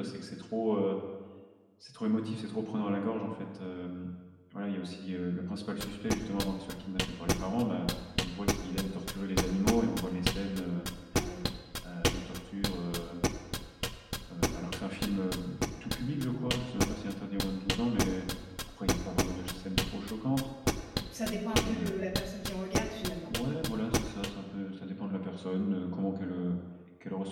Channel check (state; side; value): identical; both; correlation 1.00